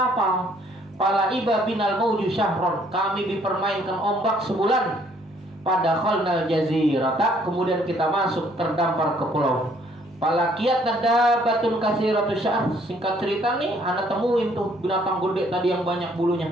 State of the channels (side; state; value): both; normal; correlation 0.63